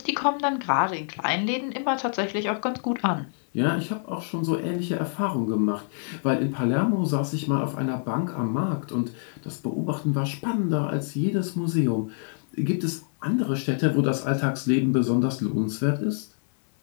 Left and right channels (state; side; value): silent; right; 57 dB below the other